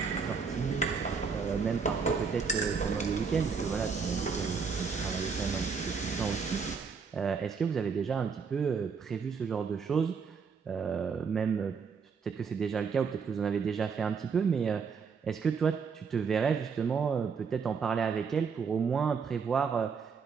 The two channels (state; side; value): quieter; left; 5.7 dB